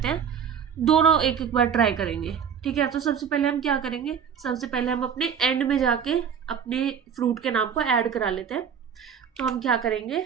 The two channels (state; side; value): quieter; left; 7.5 dB